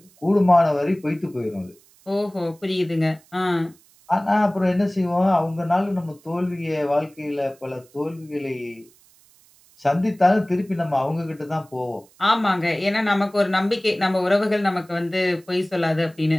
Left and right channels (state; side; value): noise; right; hiss, 29 dB below the sound